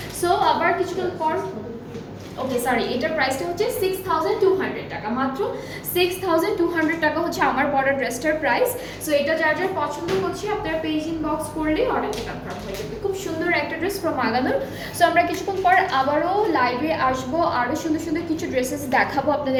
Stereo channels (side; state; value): both; identical; correlation 1.00